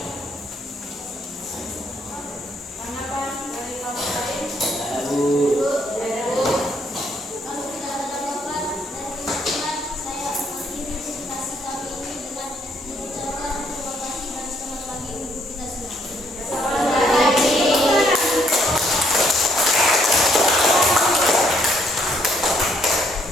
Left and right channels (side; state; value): both; normal; correlation 0.69